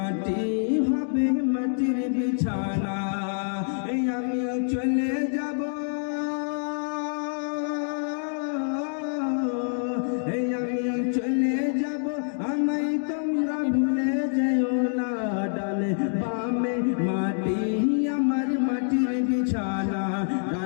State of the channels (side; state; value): right; silent; digital silence